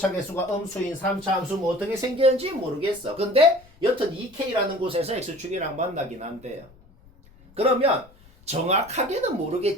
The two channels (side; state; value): left; noise; rumble, 27 dB below the sound